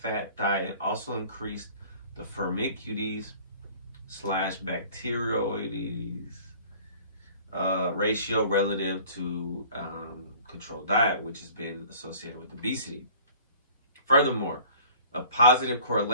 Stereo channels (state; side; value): inverted; both; correlation -0.48